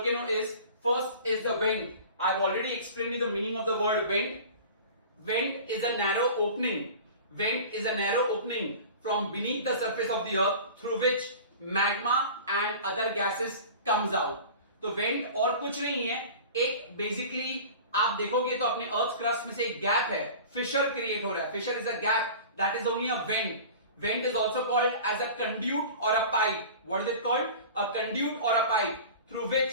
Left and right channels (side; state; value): both; inverted; correlation -0.38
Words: is, first is the vent. I've already explained you the meaning of the word vent. Vent is a narrow opening. Vent is a narrow opening from beneath the surface of the earth through which magma and other gases comes out. तो vent और कुछ नहीं है, एक basically आप देखोगे तो अपने अर्थ क्रस्ट में से एक गैप है, फिशर क्रिएट हो रहा है. Fissure is a gap, that is only a vent. Vent is also called as a conduit or a pipe. What is it called? A conduit or a pipe through